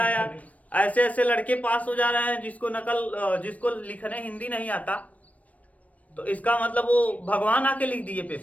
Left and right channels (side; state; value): right; late; 0.068 ms